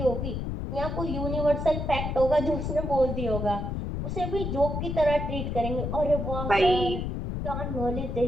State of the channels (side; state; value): left; noise; rumble, 3 dB below the sound